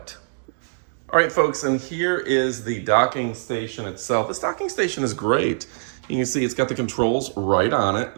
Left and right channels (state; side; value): silent; left; digital silence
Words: All right, folks, and here is the docking station itself. This docking station is great. You can see it's got the controls right on it.